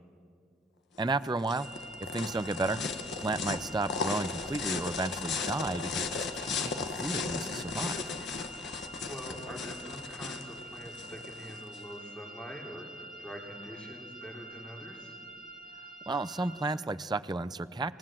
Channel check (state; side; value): normal; both; correlation 0.55